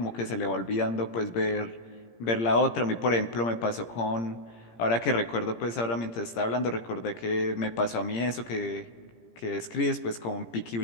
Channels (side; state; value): right; late; 17 ms